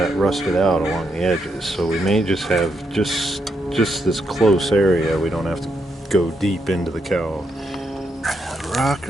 rusted out along the edges. So we may just have just this close area. We don't have to go deep into the cowl. The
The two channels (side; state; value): both; normal; correlation 0.80